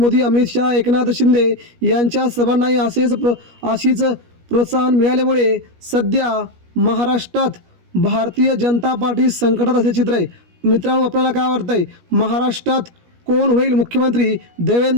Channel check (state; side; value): late; left; 17 ms